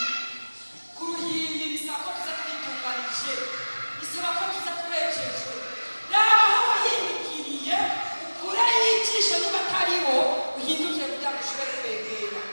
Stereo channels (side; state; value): both; inverted; correlation -1.00